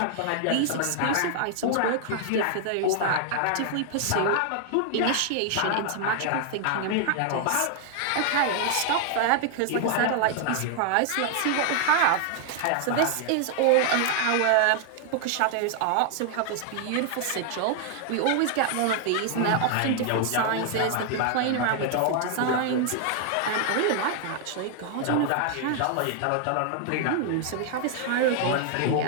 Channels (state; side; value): different; both; correlation 0.00